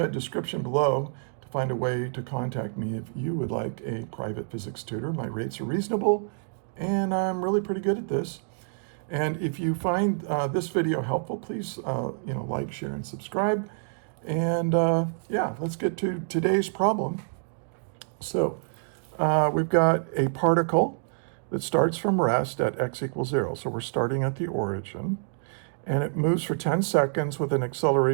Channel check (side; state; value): left; silent; digital silence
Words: description below to find a way to contact me if you would like a private physics tutor. My rates are reasonable and I'm really pretty good at this. And if you find this video helpful, please like, share, and subscribe. And yeah, let's get to today's problem. So we've got a particle that starts from rest at x equals 0. So we're starting at the origin. And it moves for 10 seconds with an